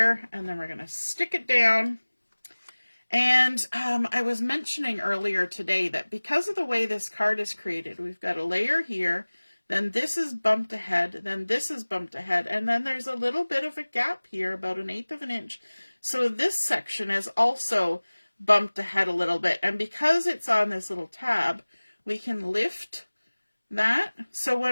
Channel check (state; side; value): inverted; both; correlation -1.00